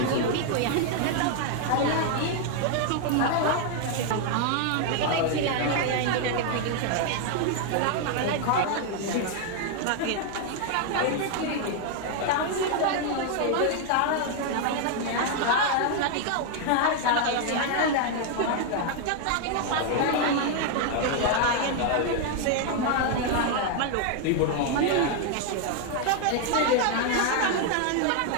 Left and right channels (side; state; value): both; different; correlation 0.00